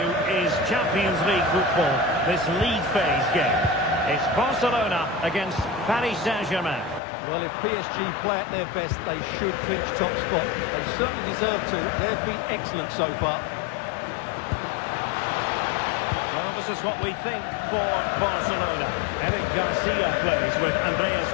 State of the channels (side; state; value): right; drops out; at 7.0 s